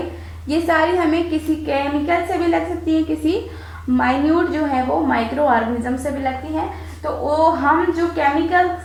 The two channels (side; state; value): both; identical; correlation 1.00